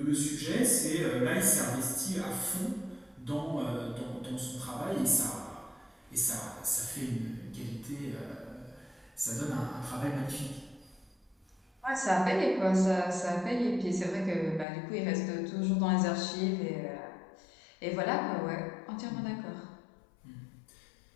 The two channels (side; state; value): right; drops out; at 14.7 s